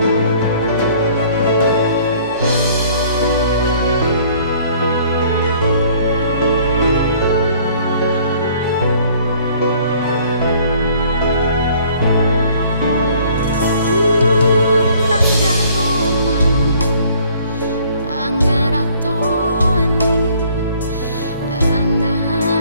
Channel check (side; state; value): both; inverted; correlation -0.57